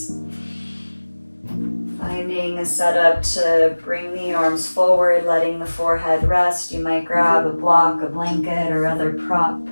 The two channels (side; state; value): both; inverted; correlation -1.00